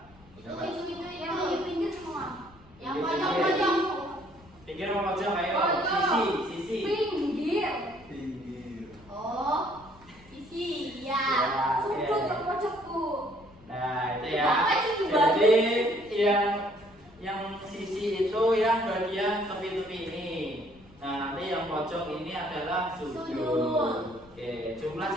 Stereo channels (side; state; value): left; noise; rumble, 25 dB below the sound